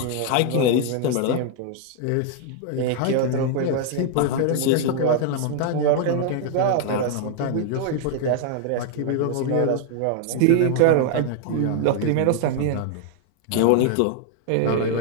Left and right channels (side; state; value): both; different; correlation 0.00